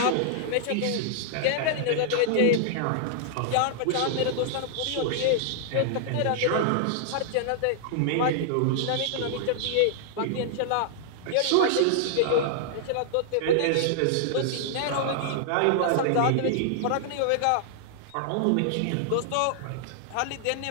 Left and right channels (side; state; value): both; different; correlation -0.01